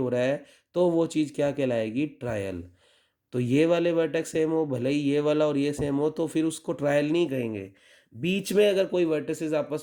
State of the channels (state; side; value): identical; both; correlation 1.00